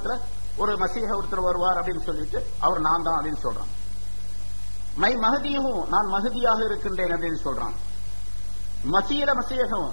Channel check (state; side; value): inverted; both; correlation -1.00